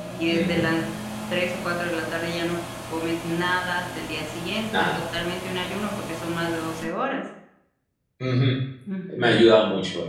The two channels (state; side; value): identical; both; correlation 1.00